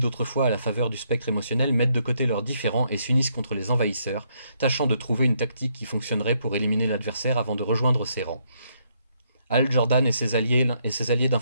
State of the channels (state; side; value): inverted; both; correlation -0.74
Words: à la faveur du spectre émotionnel mettent de côté leurs différends et s'unissent contre les envahisseurs, tâchant de trouver une tactique qui fonctionnerait pour éliminer l'adversaire avant de rejoindre ses rangs. Hal Jordan et ses alliés